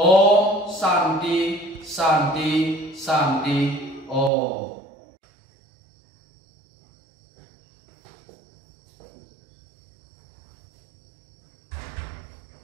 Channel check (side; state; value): left; drops out; at 4.3 s